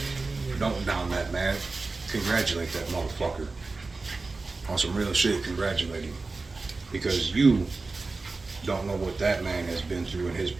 Don't down that man. Congratulate that motherfucker. On some real shit, congratulate him. Because you don't know what that man has been through in his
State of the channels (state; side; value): quieter; left; 3.7 dB